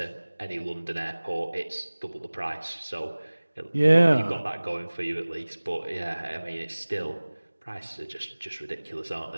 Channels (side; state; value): both; inverted; correlation -1.00